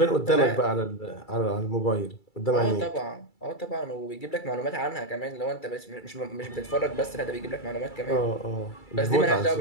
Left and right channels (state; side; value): late; right; 2.3 ms